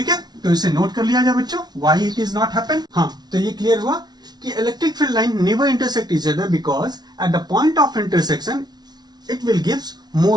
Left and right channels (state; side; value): late; left; 0.19 ms